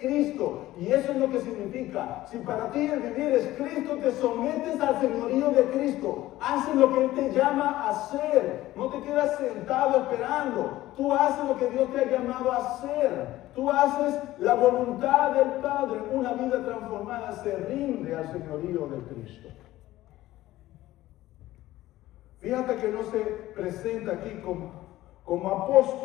Y eso es lo que significa. Si para ti el vivir es Cristo, te sometes al señorío de Cristo. Haces lo que Él te llama a hacer. No te quedas sentado esperando. Tú haces lo que Dios te ha llamado a hacer. Tú haces la voluntad del Padre. Una vida transformada se rinde al señorío de Cristo. Fíjate que no se presenta aquí como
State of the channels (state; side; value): quieter; right; 15.9 dB